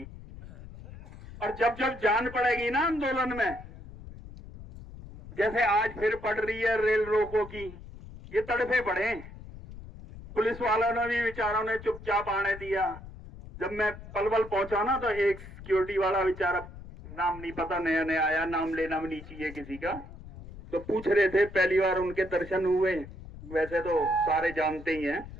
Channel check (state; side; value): noise; left; rumble, 15 dB below the sound